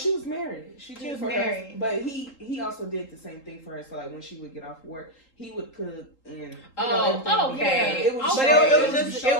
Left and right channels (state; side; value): late; right; 3.8 ms